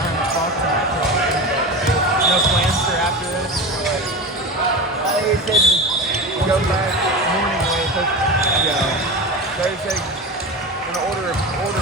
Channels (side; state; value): both; normal; correlation 0.27